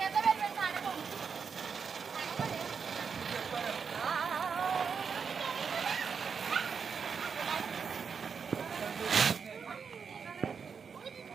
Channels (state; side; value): quieter; left; 6.1 dB